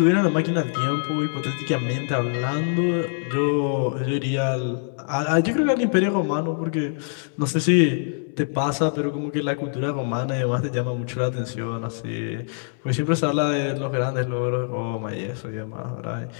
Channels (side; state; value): right; silent; 63 dB below the other